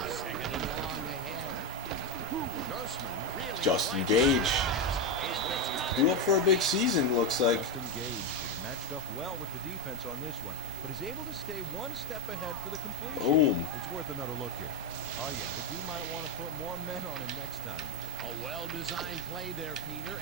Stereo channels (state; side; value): normal; both; correlation 0.07